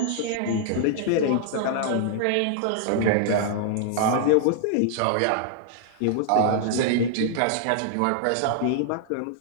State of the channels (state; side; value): different; both; correlation -0.01